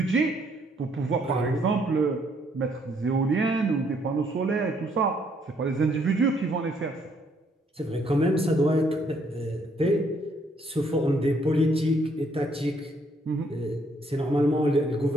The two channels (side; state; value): both; normal; correlation 0.69